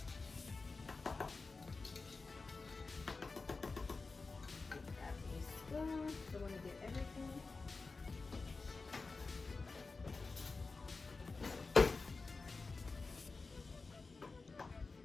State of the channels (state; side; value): quieter; right; 4.0 dB